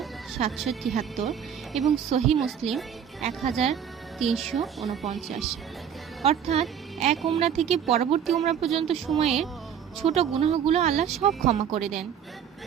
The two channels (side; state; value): left; quieter; 8.4 dB